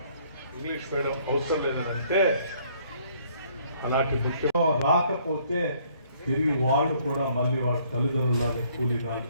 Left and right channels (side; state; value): both; inverted; correlation -0.63